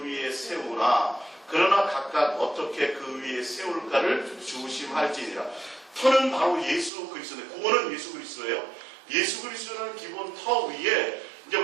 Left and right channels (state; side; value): drops out; left; at 6.9 s